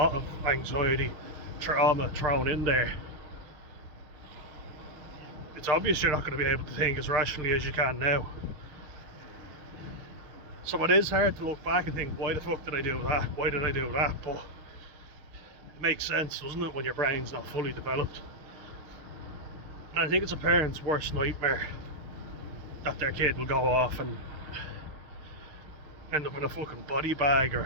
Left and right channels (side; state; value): left; late; 6.5 ms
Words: of anxiety, trauma thrown in there. It's obvious you're not going to be able to think as rationally as you can now. So it is hard to look back and think, why the fuck did I do that? Why did I do that? But it makes sense, doesn't it, when your brain's not fully developed? And I think it's a parent's worst nightmare that their kid will go off and end up in a fucking body bag,